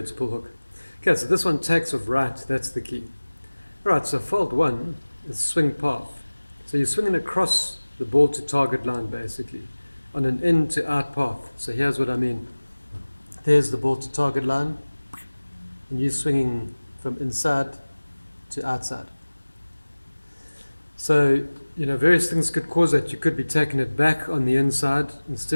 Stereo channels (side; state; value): both; inverted; correlation -1.00